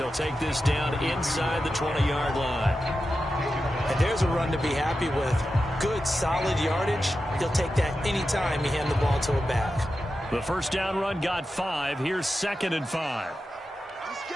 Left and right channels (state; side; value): normal; both; correlation 0.91